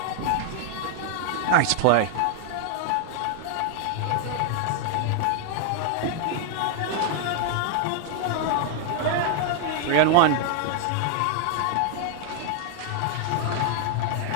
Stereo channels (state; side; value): different; both; correlation 0.00